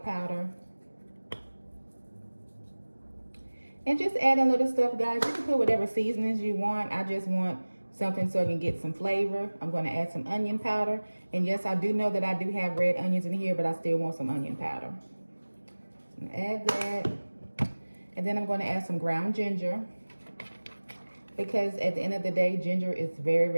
powder. And just add a little stuff, guys. You can put whatever seasonings you want. I just want something so I can get some flavor. I'm gonna add some onion powder. And yes, I do know that I do have red onions in here, but I still want some onion powder. So I'm gonna add that. And then I'm gonna add some ground ginger, because at the end of the day, ginger is very,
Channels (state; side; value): inverted; both; correlation -1.00